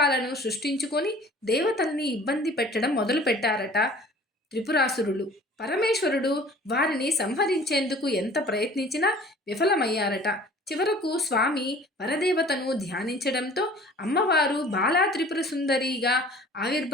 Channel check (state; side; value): normal; both; correlation 0.48